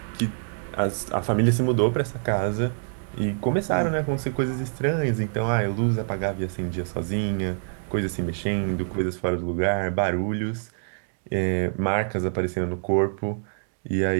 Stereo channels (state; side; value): silent; left; digital silence